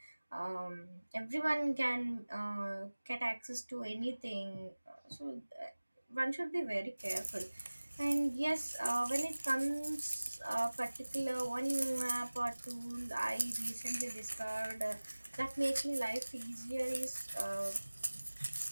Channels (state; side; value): inverted; both; correlation -1.00